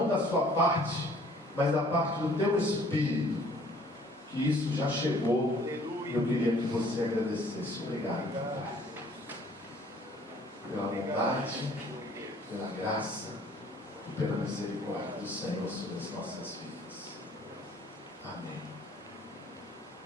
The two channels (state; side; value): normal; both; correlation 0.57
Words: da sua parte, mas da parte do teu espírito, que isso já chegou. Eu queria que você agradecesse. Obrigado, Pai, pela bondade, pela graça e pela misericórdia do Senhor sobre as nossas vidas. Amém.